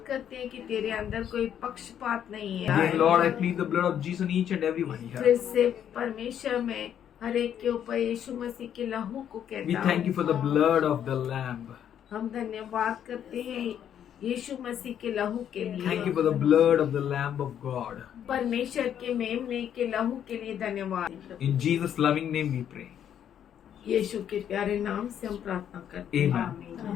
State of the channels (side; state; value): right; quieter; 9.5 dB